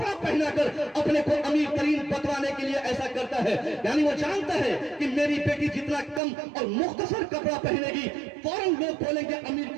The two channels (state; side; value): drops out; left; at 6.2 s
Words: पहनाकर अपने को अमीर तरीन बतवाने के लिए ऐसा करता है। यानी वो जानता है कि मेरी बेटी जितना कम और मुख्तसर कपड़ा पहनेगी, फौरन लोग बोलेंगे अमीर